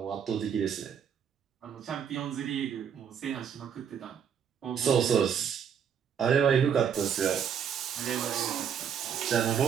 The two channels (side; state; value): left; quieter; 7.9 dB